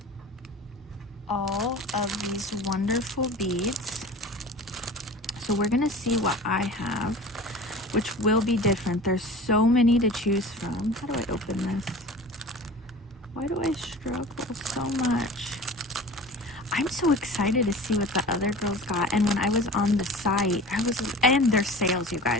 All of these wonderful beads. So we're going to see what I have, which will be different. There's so many to choose from. How do I open this? Why do I struggle so much? I'm so excited to see what the other girls got. And when I was on the site, and there's sales, you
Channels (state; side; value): normal; both; correlation 0.39